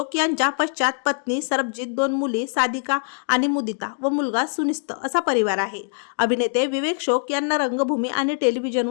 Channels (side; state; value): right; silent; 63 dB below the other